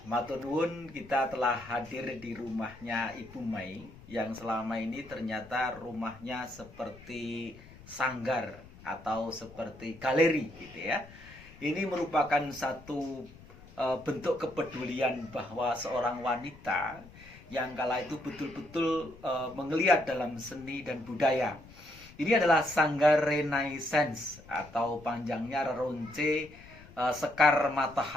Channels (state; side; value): noise; left; rumble, 20 dB below the sound